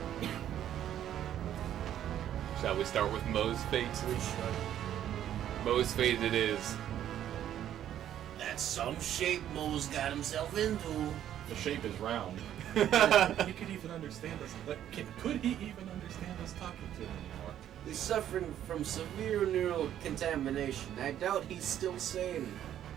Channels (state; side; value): quieter; left; 11.0 dB